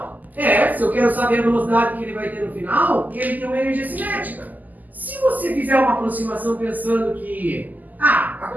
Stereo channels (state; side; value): late; left; 0.082 ms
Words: Se eu quero saber a velocidade que ele vai ter no final, ele tem uma energia cinética. Se você fizer uma aproximação pensando que a